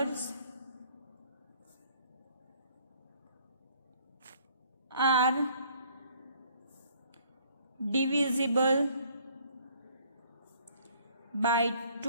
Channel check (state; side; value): inverted; both; correlation -0.60